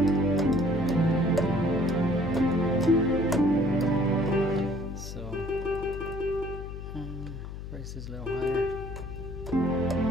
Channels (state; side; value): noise; left; hum, 9 dB below the sound